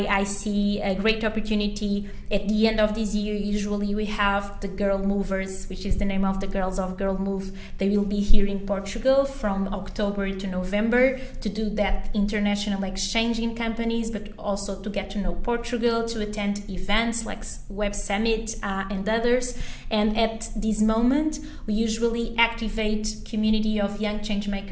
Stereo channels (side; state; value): both; identical; correlation 1.00